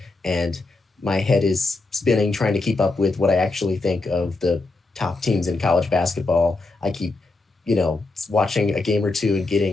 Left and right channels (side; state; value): right; quieter; 3.3 dB